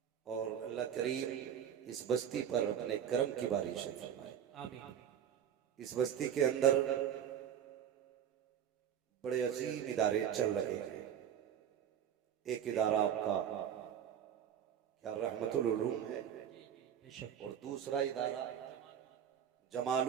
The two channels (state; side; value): quieter; left; 9.2 dB